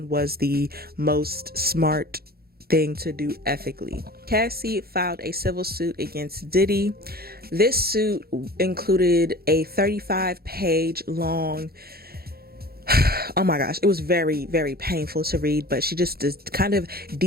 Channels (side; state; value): left; late; 0.45 ms